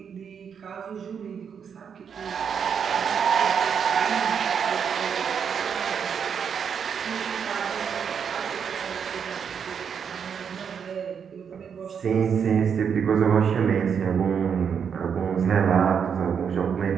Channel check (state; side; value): quieter; left; 7.1 dB